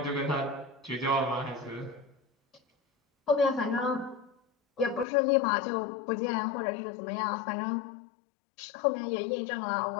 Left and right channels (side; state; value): right; drops out; at 5.1 s